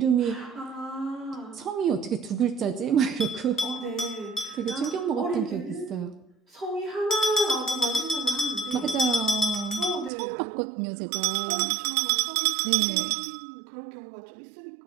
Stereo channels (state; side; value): drops out; left; at 10.1 s